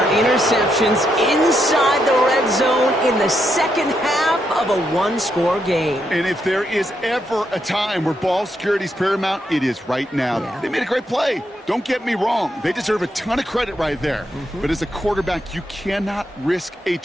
interceptions inside the red zone in the 2nd half of a 1-score game. And if there is ever a time where ball security is paramount, it is right now. Yeah. They made a great play. Don't get me wrong. They deserve a ton of credit right there. But as a quarterback, you cannot risk a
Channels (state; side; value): normal; both; correlation 0.80